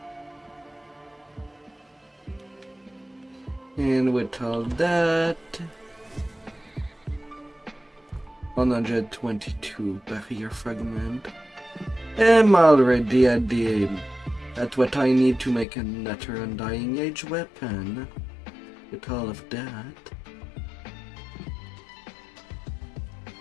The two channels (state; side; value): drops out; right; at 15.7 s